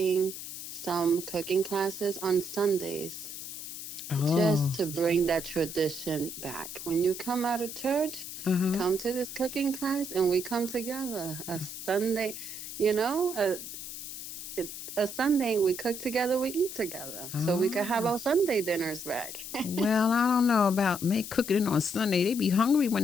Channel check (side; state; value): left; noise; hiss, 9 dB below the sound